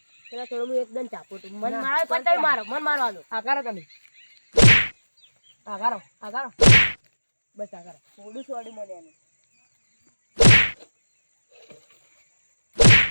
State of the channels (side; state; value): both; inverted; correlation -1.00